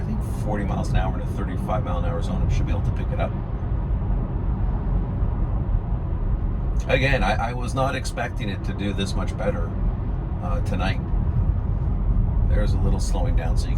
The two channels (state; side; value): identical; both; correlation 1.00